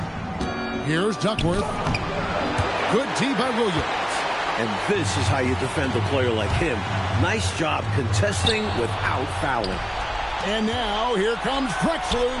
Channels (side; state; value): both; identical; correlation 1.00